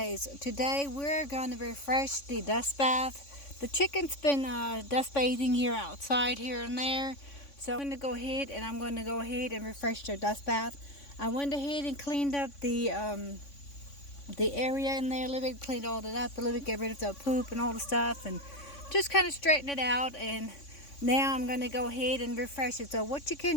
Today we're going to refresh the dust bath. The chicken's been dust bathing here outside here and there. So I'm going to go ahead and refresh their dust bath. I went ahead and cleaned up the area in there a little bit, cleaned all that up a little bit, get rid of the poop and all the stuff and just kind of straighten it out. And now I'm going to go ahead and refresh it. So what you can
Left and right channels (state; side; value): late; right; 3.5 ms